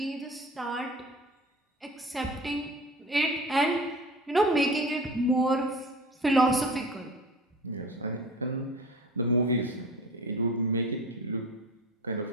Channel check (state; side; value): normal; both; correlation 0.38